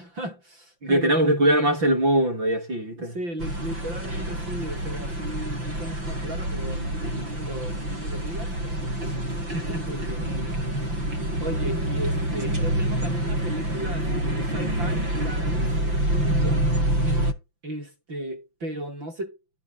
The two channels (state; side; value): late; left; 5.9 ms